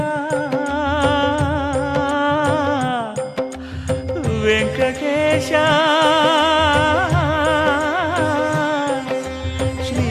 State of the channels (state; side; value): identical; both; correlation 1.00